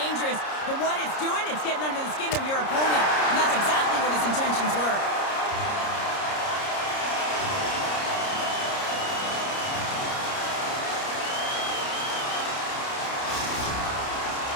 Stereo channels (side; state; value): right; late; 30 ms